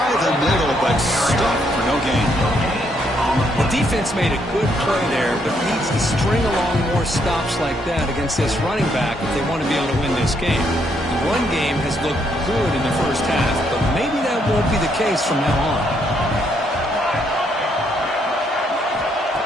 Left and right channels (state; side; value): normal; both; correlation 0.73